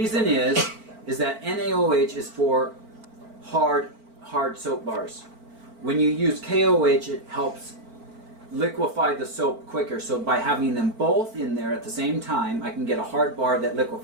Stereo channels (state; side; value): late; left; 4.4 ms